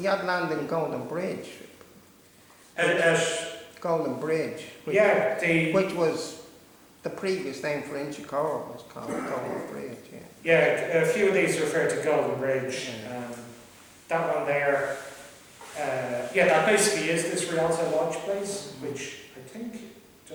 had land in Goldenbridge. Goldenbridge. Which was the previous name for Inchicore, was called Goldenbridge. Yeah, a few of these refer to Goldenbridge. That one there, that basically is this Rialt Lodge place, which I think,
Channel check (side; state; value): both; identical; correlation 1.00